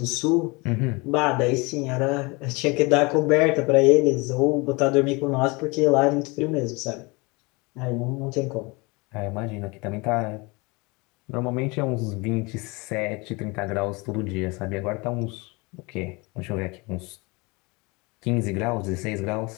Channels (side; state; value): right; quieter; 26.7 dB